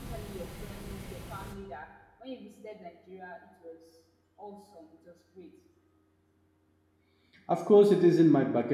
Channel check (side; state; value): both; identical; correlation 1.00